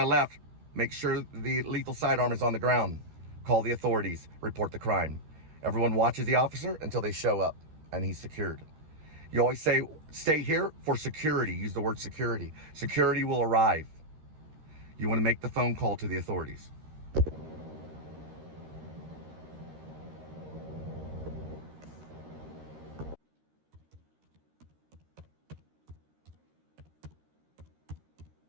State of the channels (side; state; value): left; late; 13 ms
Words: left, make sure the lethal sidearm is on the ground. Call the authorities. Report the crime. Everyone watches the officer until they show up and he's secured. You always say, stay here for security. Use the word security. Security will arrive. You want to make the phone call to the authorities.